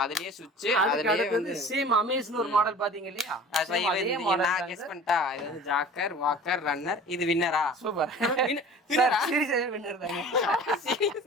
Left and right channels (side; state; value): both; normal; correlation 0.42